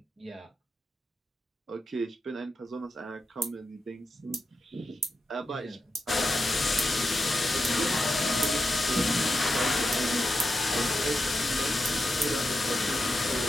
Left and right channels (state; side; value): normal; both; correlation 0.87